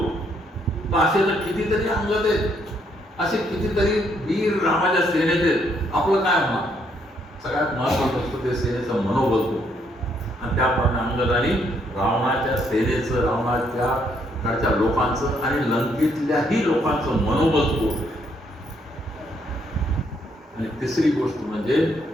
तर असे तर कितीतरी अंगद आहेत, असे कितीतरी वीर रामाच्या सेनेत आहेत, आपलं काय होणार? सगळ्यात महत्वाचं असतं ते सेनेचं मनोबल होतं. आणि त्याप्रमाणे अंगदाने रावणाच्या सेनेचं, रावणाच्या कडच्या लोकांचं आणि लंकेतल्याही लोकांचं मनोबल होतं. आणि तिसरी गोष्ट म्हणजे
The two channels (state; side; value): normal; both; correlation 0.72